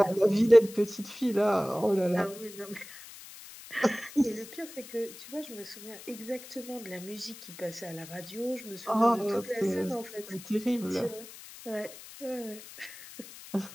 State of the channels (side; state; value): left; noise; hiss, 16 dB below the sound